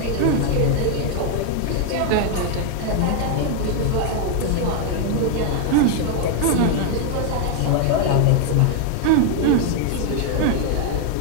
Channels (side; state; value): both; different; correlation 0.00